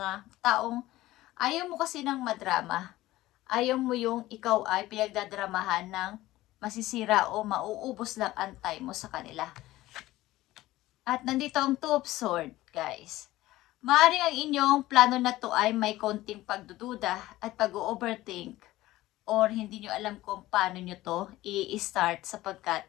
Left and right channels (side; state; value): right; quieter; 16.8 dB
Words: taong ayaw mo kasi ng madrama. Ayaw mo yung ikaw ay pinagdadramahan ng masisira o mauubos lang ang time mo sa kanila. At nandito ang Two of Swords, guys. Maaaring ang inyong plano na to ay may konting pagdududa at pag-overthink or hindi nyo alam kung paano nyo to i-start sapagkat